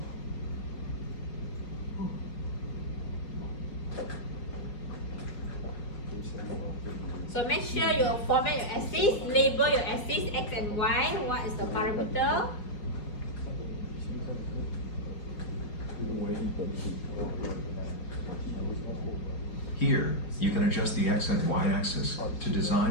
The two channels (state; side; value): late; right; 4.8 ms